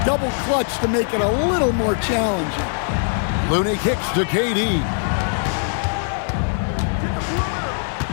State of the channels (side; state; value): right; silent; digital silence